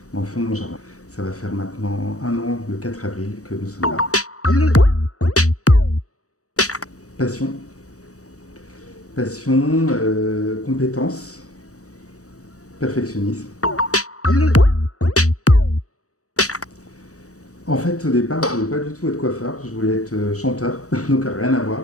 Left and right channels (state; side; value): late; right; 0.66 ms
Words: dans le fond de mon jardin. Ça va faire maintenant 1 an, le 4 avril, que nous sommes là. Passion, compétence, perfectionnisme. En fait, au départ, je ne voulais pas du tout être coiffeur, je voulais être chanteur, donc rien à voir.